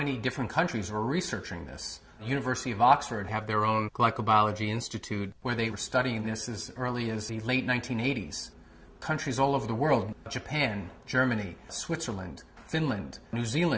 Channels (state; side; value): identical; both; correlation 1.00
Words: different countries were researching this. The University of Oxford have their own glycobiology institute where they were studying this as early as the late 1980s. Countries all over the world, Japan, Germany, Switzerland, Finland, New